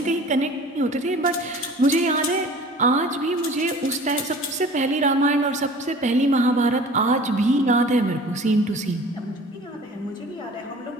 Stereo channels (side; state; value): both; normal; correlation 0.44